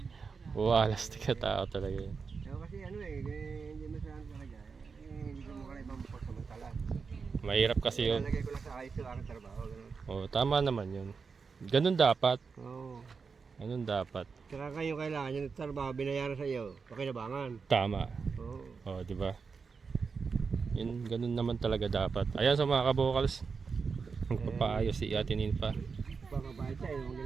Walas tika tao talaga yun. Kasi ano hindi mo saan talaga. Hindi ko mo kaya ibang pagsamantala. Mahirap kasi yun. Nalagay ko lang sa ayos yung aking trabaho. Ganun. Oo, tama naman yun. Ganun dapat. Oo. Ganun dapat. Saka kayo kailangan yung trabaho binayaran sa iyo. Pakinabangan. Tama. Oo. Oo, di ba? Yun, ganun naman talaga dapat. Ayan sa mga kabokals. Magpapaayos si Ate Ninfa. Pagkabayad siya, yung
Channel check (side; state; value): left; quieter; 5.2 dB